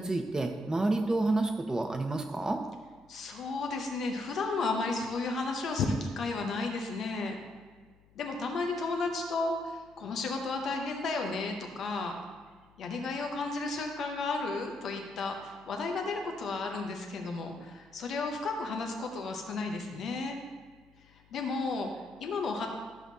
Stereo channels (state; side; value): noise; left; hum, 28 dB below the sound